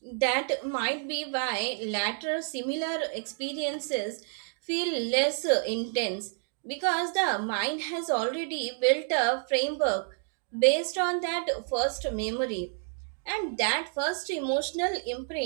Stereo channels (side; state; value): left; silent; 58 dB below the other